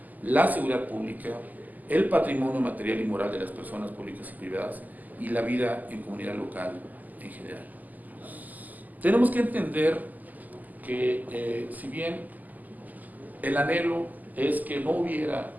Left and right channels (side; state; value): left; late; 0.082 ms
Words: la seguridad pública, el patrimonio material y moral de las personas públicas y privadas y la vida en comunidad local en general. Tenemos que entender que si bien el anhelo es que no hubiera